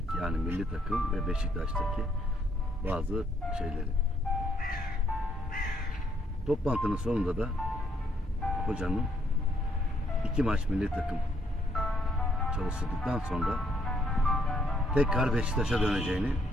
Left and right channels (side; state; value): both; normal; correlation 0.71